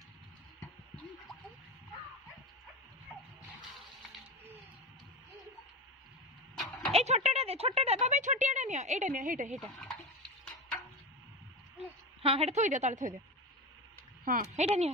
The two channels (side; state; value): both; normal; correlation 0.23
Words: ए छोटा बाबा छोटियाटा नियो एटा नियो हेटा हां हेटा थोई दे ताले थोई दे हाँ हेटा नहीं